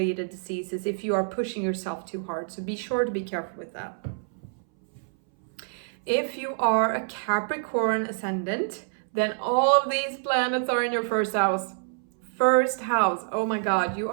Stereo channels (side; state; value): left; silent; 60 dB below the other